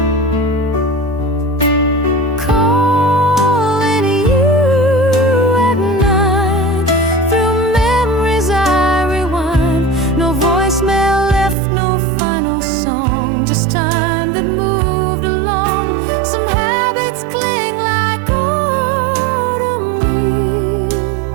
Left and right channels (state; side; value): drops out; left; at 11.6 s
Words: Calling you at 9. Through memories I rewind. No voicemail left, no final song, just time that moved along. Some habits cling like autumn